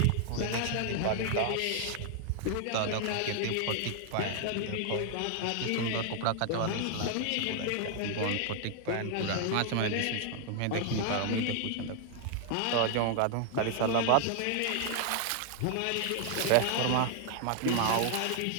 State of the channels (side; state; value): both; different; correlation 0.00